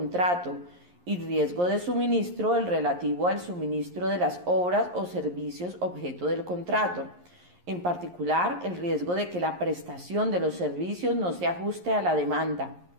y riesgo de suministro el relativo al suministro de las obras o servicios objeto del contrato, en particular el riesgo de que la prestación de los servicios no se ajuste a la demanda.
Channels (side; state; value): left; late; 11 ms